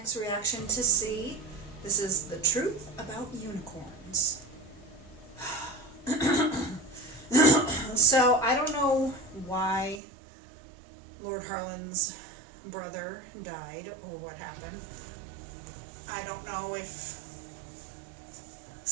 reaction to See. This is the truth about unicorns. So I don't know why Lord Harlan's brother died or what happened. I don't know if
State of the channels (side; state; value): left; drops out; at 10.0 s